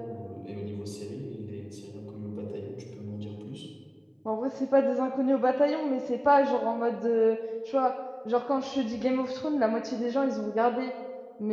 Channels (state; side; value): identical; both; correlation 1.00